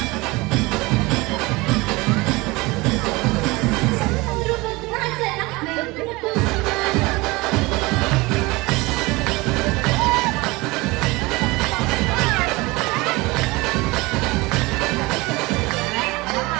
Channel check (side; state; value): left; quieter; 22.8 dB